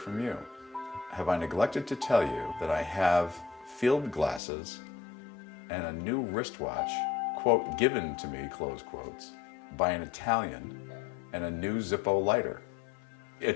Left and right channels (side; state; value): right; drops out; at 4.4 s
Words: you. Have I neglected to tell you that I have field glasses and a new wristwatch, quote, given to me, close quotes, by an Italian, and a new Zippo lighter?